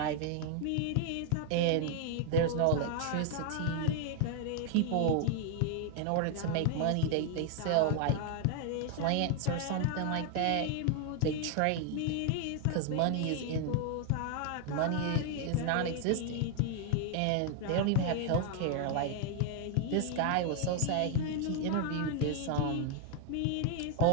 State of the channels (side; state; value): both; different; correlation 0.00